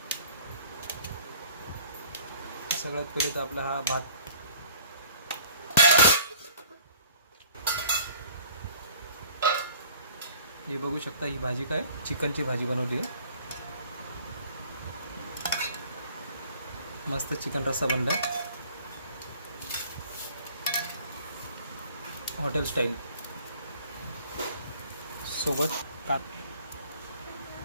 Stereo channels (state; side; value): inverted; both; correlation -0.52